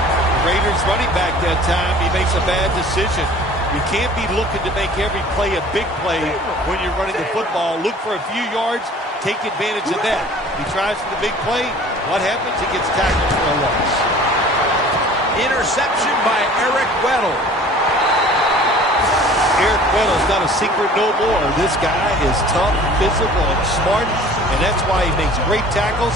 Raiders running back that time, he makes a bad decision. You can't be looking to make every play a big play when you're running the football. Look for a few yards, take advantage of that. He tries for the big play. What happens? He gets tackled for a loss. Interception by Eric Weddle. Eric Weddle's not a secret no more. This guy is tough, physical, and smart, and that's why he makes great tackles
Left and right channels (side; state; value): both; normal; correlation 0.48